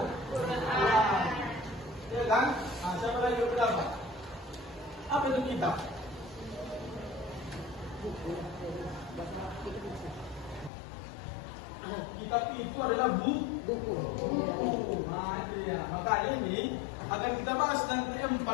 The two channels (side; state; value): right; drops out; at 10.7 s